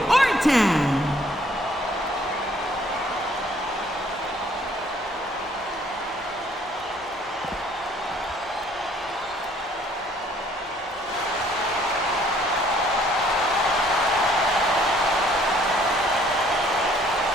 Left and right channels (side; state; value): both; normal; correlation 0.61